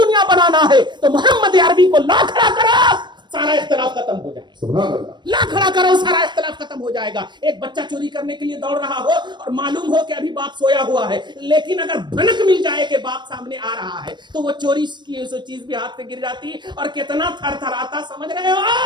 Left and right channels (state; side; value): late; left; 0.22 ms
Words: بنانا ہے, تو محمد عربی کو لا کھڑا کرو, سارا اختلاف ختم ہو جائے گا. لا کھڑا کرو, سارا اختلاف ختم ہو جائے گا. ایک بچہ چوری کرنے کے لیے دوڑ رہا ہو اور معلوم ہو کہ ابھی باپ سویا ہوا ہے, لیکن اگر بھنک مل جائے کہ باپ سامنے آ رہا ہے تو وہ چوری کی چیز بھی ہاتھ سے گر جاتی اور کتنا تھر تھراتا, سمجھ رہے